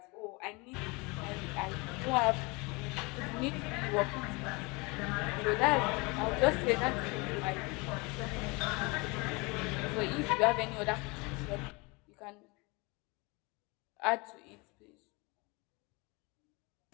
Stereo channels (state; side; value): quieter; right; 27.1 dB